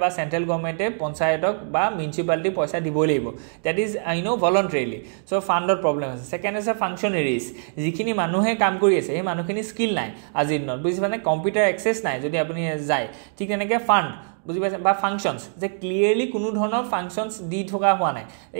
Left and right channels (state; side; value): silent; left; digital silence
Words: বা সেন্ট্ৰেল গভৰ্নমেন্টে পঞ্চায়তক বা মিউনিসিপালিটি পইচা দিবই লাগিব দ্যাট ইজ ভলান্টাৰিলি সো ফান্ডৰ প্ৰবলেম আছে সেকেন্ড আছে ফাংচনাৰিজ যিখিনি মানুহে কাম কৰি আছে এই মানুহখিনি স্কিল নাই আজিৰ দিনত বুজি মানে কম্পিউটাৰ এক্সেস নাই যদি আপুনি যায় ঠিক তেনেকৈ ফান্ড বুজি পাইছে বা ফাংশনস যে ক্লিয়াৰলি কোনো ধৰণৰ ফাংশনস দি থকা হোৱা নাই